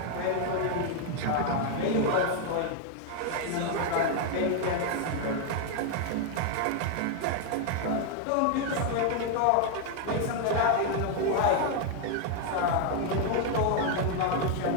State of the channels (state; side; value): different; both; correlation 0.00